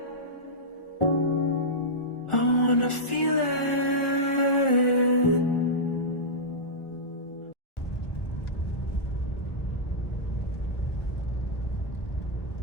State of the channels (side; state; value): right; late; 1.4 ms